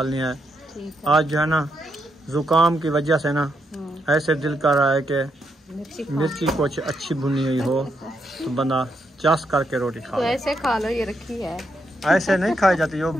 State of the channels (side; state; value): both; normal; correlation 0.80